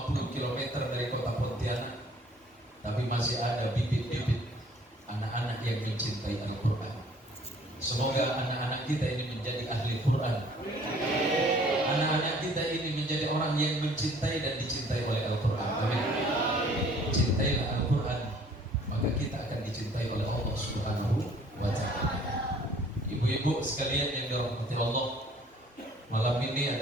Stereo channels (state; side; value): normal; both; correlation 0.56